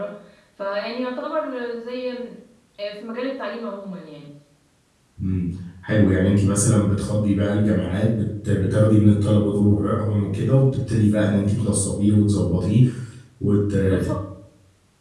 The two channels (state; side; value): identical; both; correlation 1.00